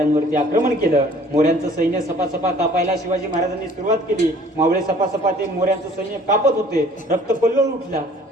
आक्रमण केलं. मोऱ्यांचं सैन्य सपासपा कापायला शिवाजी महाराजांनी सुरुवात केली. मावळे सपासपा ते मोऱ्यांचं सैन्य कापत होते. रक्तकल्लोळ उठला.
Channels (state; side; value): normal; both; correlation 0.53